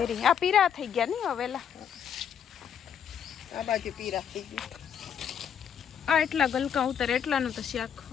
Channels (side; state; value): right; quieter; 8.4 dB